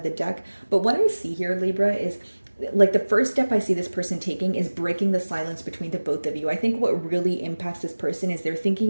the deck. But what I see here, Libra, is like the first step I see this person taking is breaking the silence between the both of you. I think what really impacts this person is they're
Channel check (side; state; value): both; inverted; correlation -1.00